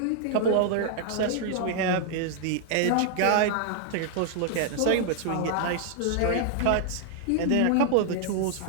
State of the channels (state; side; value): different; both; correlation 0.00